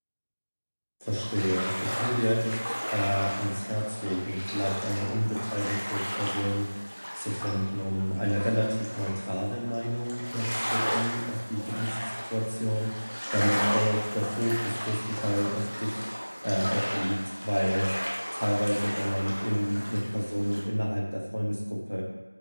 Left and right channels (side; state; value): both; inverted; correlation -1.00